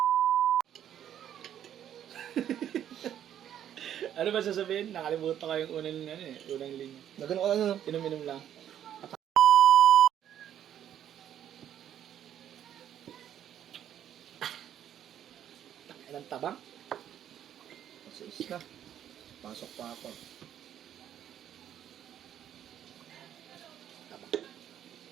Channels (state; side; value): quieter; left; 10.3 dB